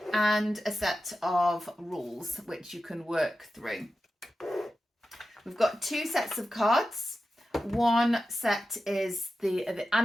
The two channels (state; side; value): normal; both; correlation 0.92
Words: and a set of rules which you can work through. We've got 2 sets of cards. One set is the